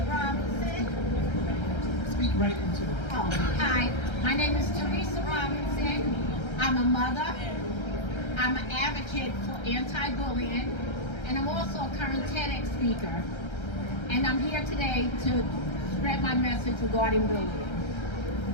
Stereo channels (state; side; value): late; right; 1.3 ms